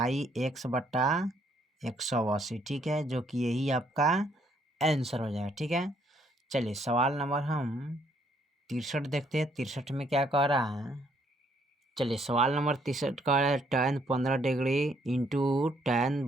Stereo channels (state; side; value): normal; both; correlation 0.68